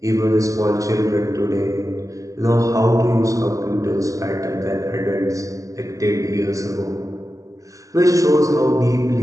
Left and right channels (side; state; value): left; late; 0.16 ms